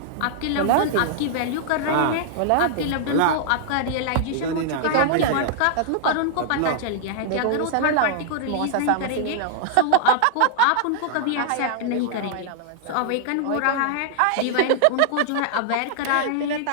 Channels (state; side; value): different; both; correlation -0.01